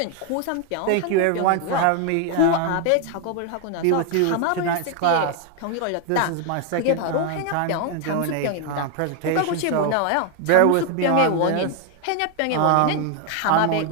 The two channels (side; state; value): both; different; correlation 0.00